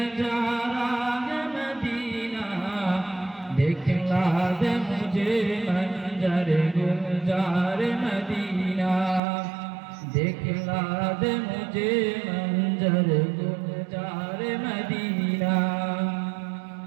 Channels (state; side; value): drops out; left; at 9.2 s